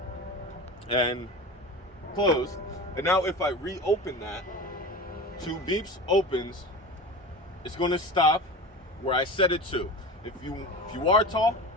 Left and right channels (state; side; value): normal; both; correlation 0.31